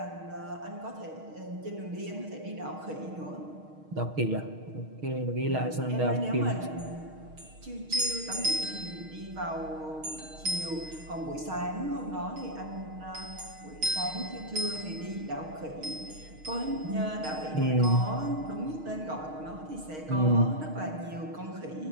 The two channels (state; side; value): late; left; 6.4 ms